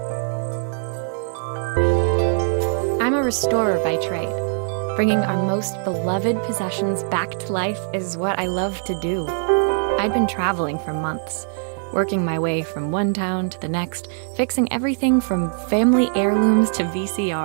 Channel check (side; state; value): left; silent; digital silence